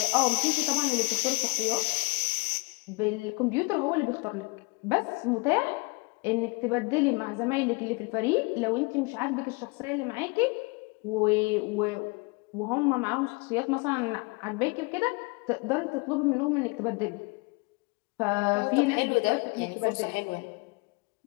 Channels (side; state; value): right; quieter; 28.9 dB